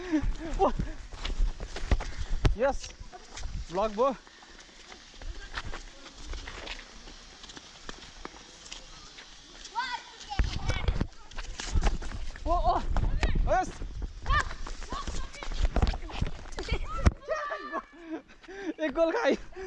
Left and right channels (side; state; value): both; identical; correlation 1.00